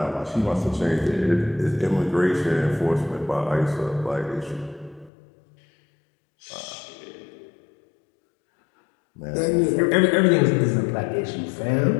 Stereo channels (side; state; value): right; drops out; at 5.1 s